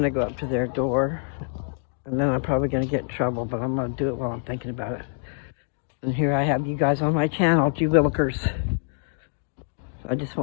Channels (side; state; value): right; silent; 61 dB below the other